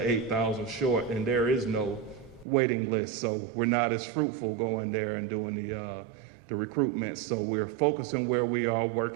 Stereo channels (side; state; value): left; drops out; at 2.5 s